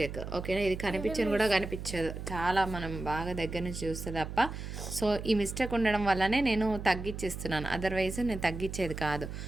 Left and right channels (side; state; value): right; noise; hum, 8 dB below the sound